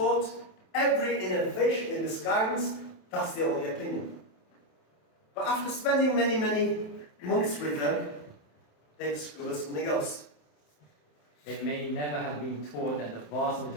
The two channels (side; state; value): right; late; 27 ms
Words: every innovation in this guidance, that's the only opinion. But after spending many, many months with them, they discovered something else. They may never have been taught that the vast